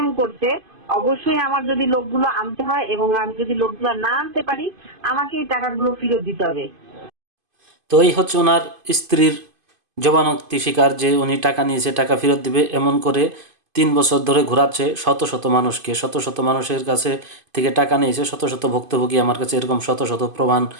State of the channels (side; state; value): left; late; 2.5 ms